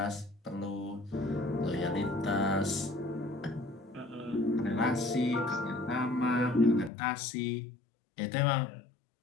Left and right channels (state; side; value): drops out; right; at 6.9 s